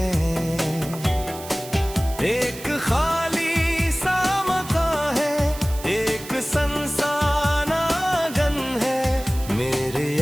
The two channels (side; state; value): right; noise; hiss, 14 dB below the sound